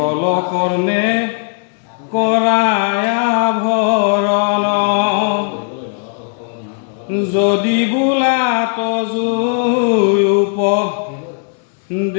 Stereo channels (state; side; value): silent; right; 69 dB below the other